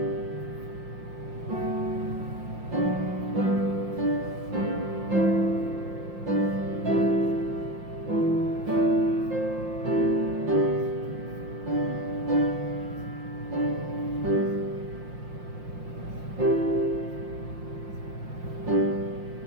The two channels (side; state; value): left; late; 5.7 ms